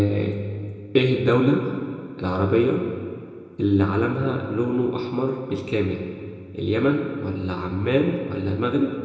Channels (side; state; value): both; identical; correlation 1.00